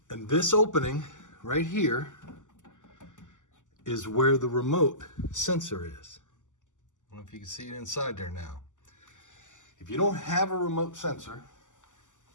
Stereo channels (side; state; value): right; late; 0.86 ms